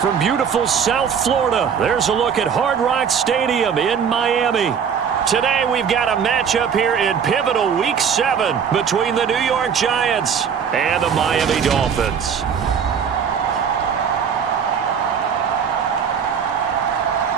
From beautiful South Florida, there's a look at Hard Rock Stadium in Miami. Today we've got a matchup here in pivotal Week 7 between the New York Giants and the Miami Dolphins.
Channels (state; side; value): quieter; left; 7.2 dB